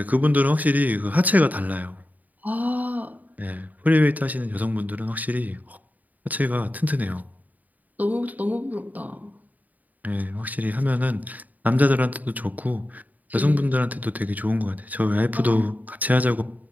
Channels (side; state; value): left; late; 0.078 ms